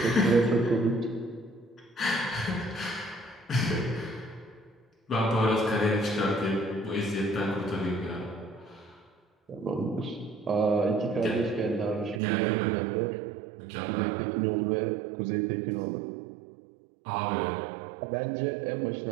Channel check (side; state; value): left; drops out; at 12.2 s